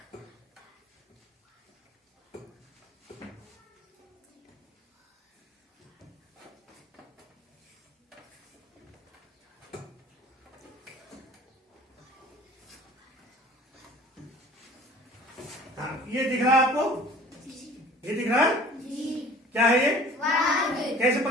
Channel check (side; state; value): both; normal; correlation 0.47